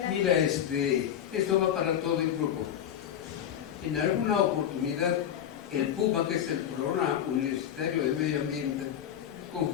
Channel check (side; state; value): right; quieter; 9.8 dB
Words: mira, esto va para todo el grupo. En alguna oportunidad, el PUMA, que es el Programa Universitario de Medio Ambiente,